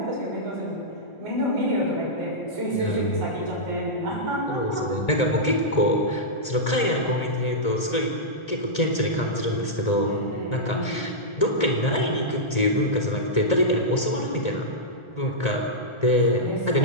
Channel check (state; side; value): late; right; 1.4 ms